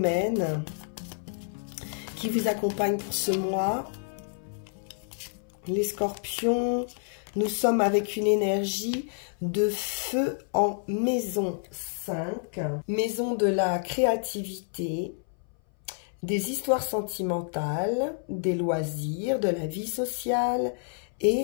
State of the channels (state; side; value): silent; right; 59 dB below the other